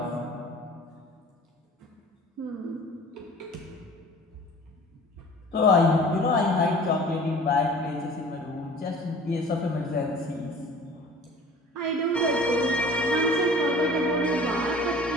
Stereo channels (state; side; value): normal; both; correlation 0.45